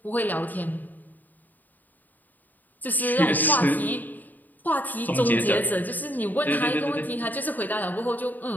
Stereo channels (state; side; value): late; right; 0.085 ms